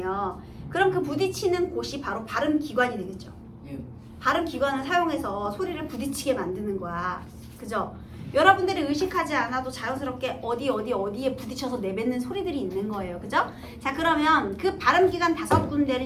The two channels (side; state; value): both; identical; correlation 1.00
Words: 그럼 그 부딪히는 곳이 바로 발음 기관이 되겠죠. 발음 기관을 사용해서 소리를 부딪히게 만드는 거야. 그죠? 여러분들이 의식하지 않아도 자연스럽게 어디에 부딪혀서 내뱉는 소리들이 있는 거예요. 그죠? 자, 그러면 그 발음 기관